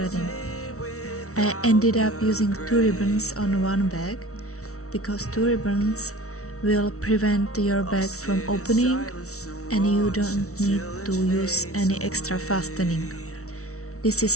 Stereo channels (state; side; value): late; right; 0.64 ms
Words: I ended up using 2 ribbons on one bag because 2 ribbons will prevent your bag from opening and you don't need to use any extra fastening. This